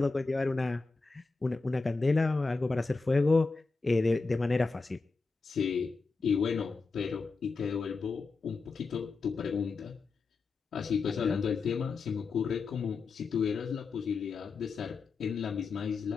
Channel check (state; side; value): quieter; right; 4.2 dB